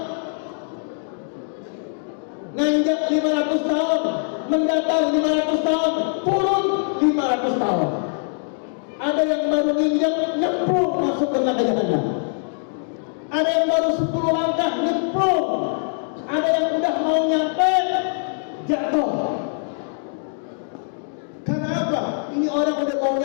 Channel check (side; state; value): right; silent; digital silence